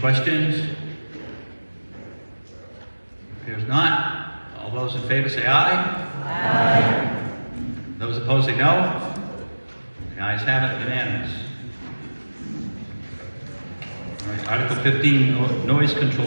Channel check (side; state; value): both; inverted; correlation -1.00